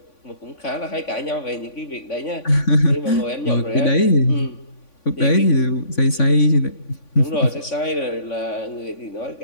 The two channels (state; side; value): late; right; 3.5 ms